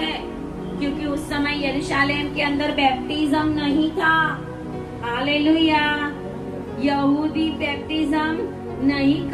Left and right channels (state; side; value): identical; both; correlation 1.00